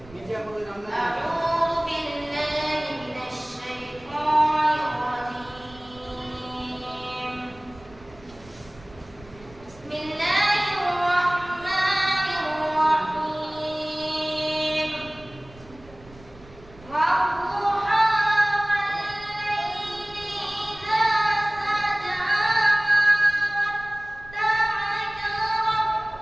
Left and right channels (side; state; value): right; noise; rumble, 22 dB below the sound